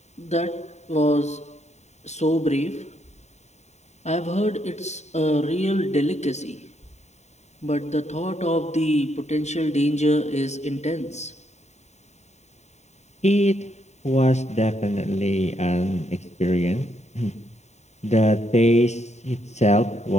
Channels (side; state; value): right; late; 0.32 ms